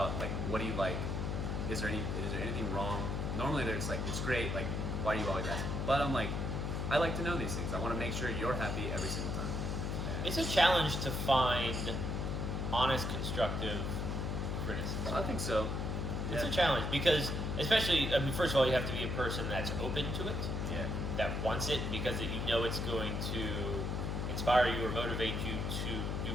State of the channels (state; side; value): noise; left; hum, 1 dB below the sound